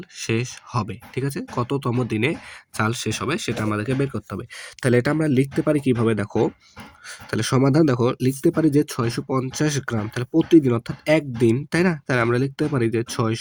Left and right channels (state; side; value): identical; both; correlation 1.00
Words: শেষ হবে? ঠিক আছে? কততম দিনে চাল শেষ হবে সেটা আমাদেরকে বের করতে হবে। তাহলে এটা আমরা লিখতে পারি কিভাবে? দেখো, তাহলে সমাধান দেখো, লিখতে পারি যে ৬৫০ গ্রাম, তাহলে প্রতিদিন অর্থাৎ একদিন, তাই না? তাহলে আমরা লিখতে পারি যে